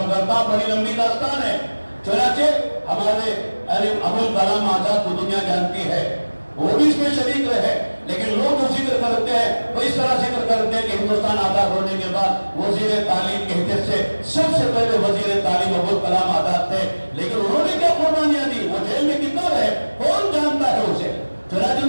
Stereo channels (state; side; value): inverted; both; correlation -1.00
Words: کرتا ہوں، بڑی لمبی داستان ہے۔ چنانچہ ہمارے ابوالکلام آزاد کو دنیا جانتی ہے، وہ بھی اس میں شریک رہے، لیکن لوگ جو ذکر کرتے ہیں وہ اس طرح ذکر کرتے ہیں کہ ہندوستان آزاد ہونے کے بعد وزیر تعلیم کے حیثیت سے سب سے پہلے وزیر تعلیم ابوالکلام آزاد تھے، لیکن انہوں نے کیا قربانیاں دی؟ وہ جیل میں کتنا رہے کون جانتا ہے اسے؟ چنانچہ